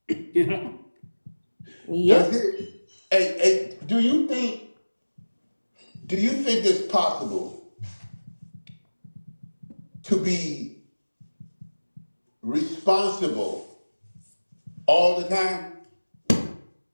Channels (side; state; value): both; inverted; correlation -1.00